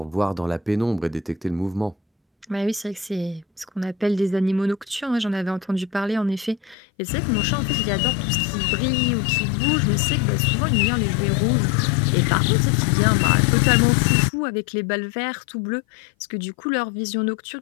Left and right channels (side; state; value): right; drops out; at 6.8 s